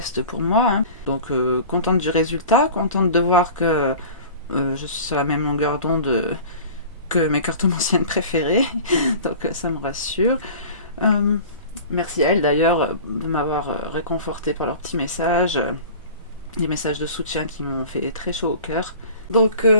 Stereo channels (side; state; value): both; inverted; correlation -0.40